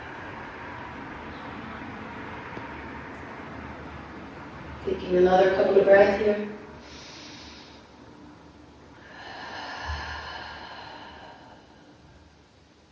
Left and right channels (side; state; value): both; identical; correlation 1.00